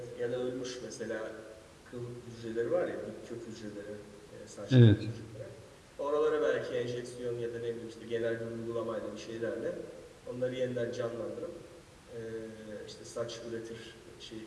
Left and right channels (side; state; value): both; identical; correlation 1.00